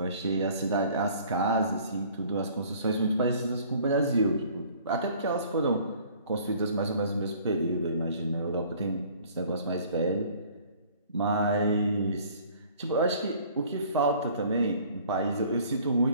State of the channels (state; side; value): inverted; both; correlation -0.53